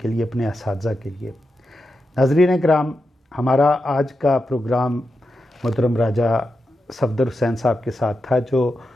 لیے، اپنے اساتذہ کے لیے. ناظرین اکرام، ہمارا آج کا پروگرام محترم راجہ صفدر حسین صاحب کے ساتھ تھا، جو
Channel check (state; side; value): normal; both; correlation 0.88